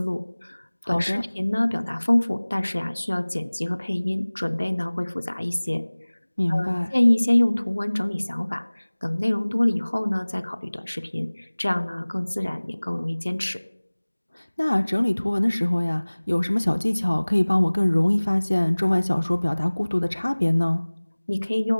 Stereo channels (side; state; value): both; inverted; correlation -1.00